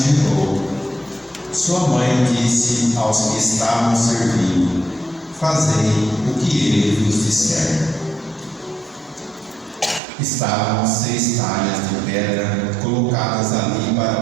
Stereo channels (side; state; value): left; drops out; at 10.0 s